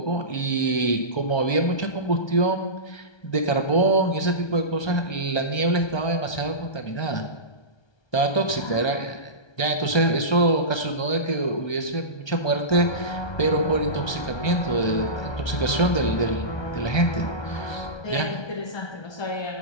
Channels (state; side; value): late; right; 1.3 ms